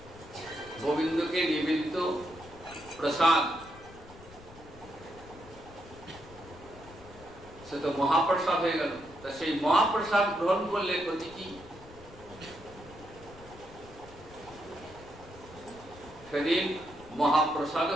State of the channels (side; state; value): left; noise; rumble, 19 dB below the sound